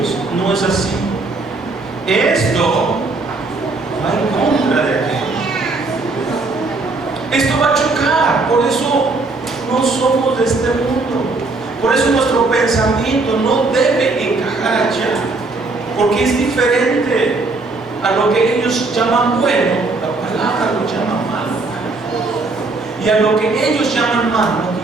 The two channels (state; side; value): quieter; left; 3.5 dB